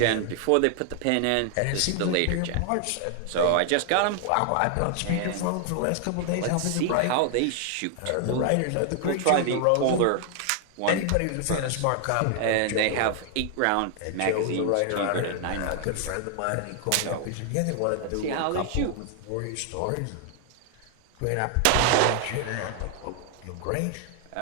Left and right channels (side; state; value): both; different; correlation 0.00